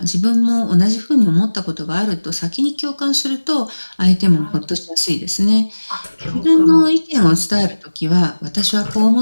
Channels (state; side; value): inverted; both; correlation -1.00